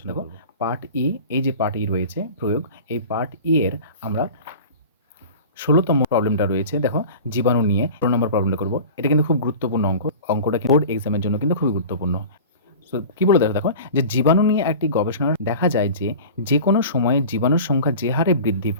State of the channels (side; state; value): both; inverted; correlation -0.37